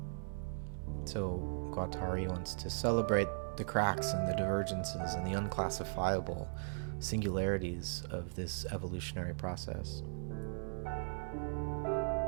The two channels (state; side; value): silent; left; digital silence